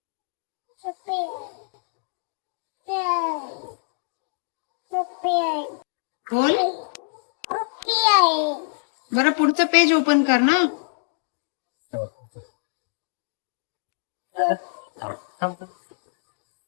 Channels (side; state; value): right; silent; digital silence